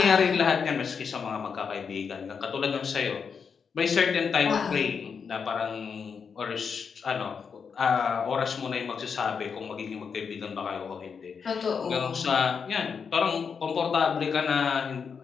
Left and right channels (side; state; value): right; quieter; 6.1 dB